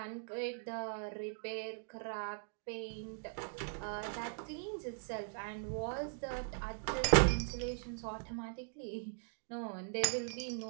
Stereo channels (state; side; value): silent; left; digital silence